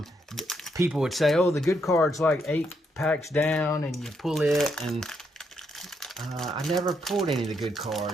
people would say, oh, the good card's like 8 packs down and you pull it, and I never pulled any of the good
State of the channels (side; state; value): both; normal; correlation 0.77